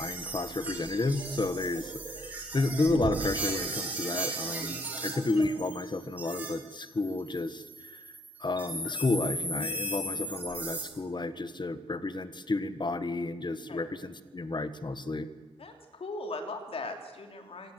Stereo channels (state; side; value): normal; both; correlation 0.68